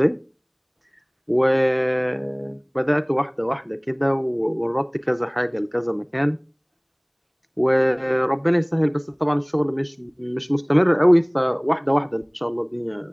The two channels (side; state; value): both; identical; correlation 1.00